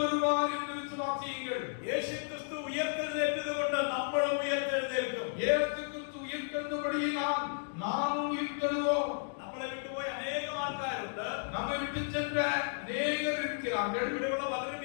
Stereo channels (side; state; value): right; silent; digital silence